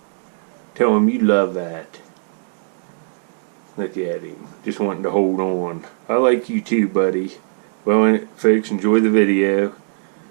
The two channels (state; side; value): silent; left; digital silence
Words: Tell him you love that. Look at him. Just wanting to hold on. I like you too, buddy. Well, folks, enjoy the video.